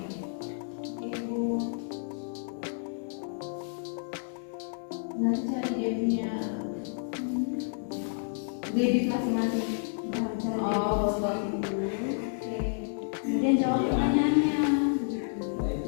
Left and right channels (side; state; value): right; silent; digital silence